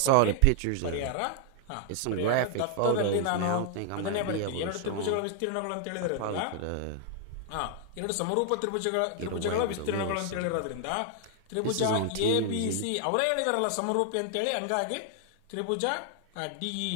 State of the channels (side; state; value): both; different; correlation 0.00